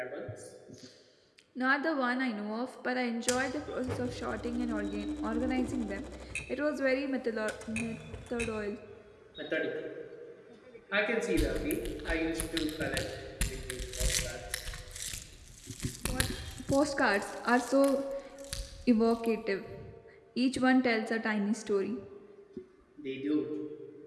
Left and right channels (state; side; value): identical; both; correlation 1.00